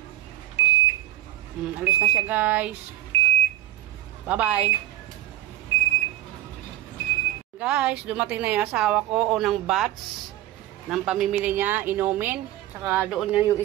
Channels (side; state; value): left; quieter; 14.2 dB